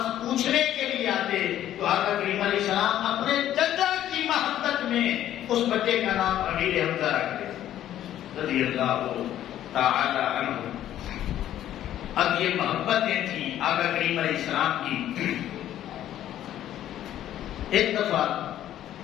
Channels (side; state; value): right; quieter; 12.0 dB